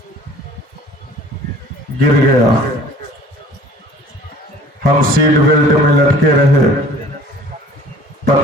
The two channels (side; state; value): both; normal; correlation 0.49